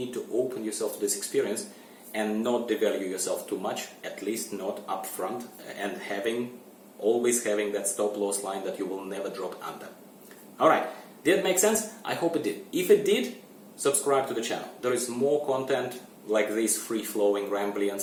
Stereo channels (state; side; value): identical; both; correlation 1.00